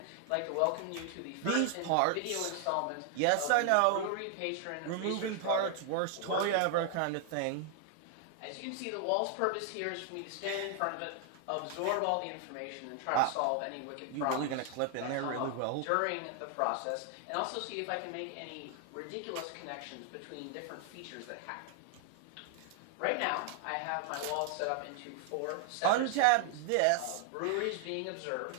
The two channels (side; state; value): both; different; correlation 0.00